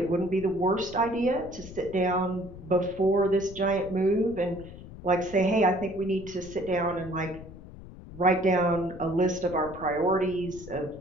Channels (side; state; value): left; noise; rumble, 15 dB below the sound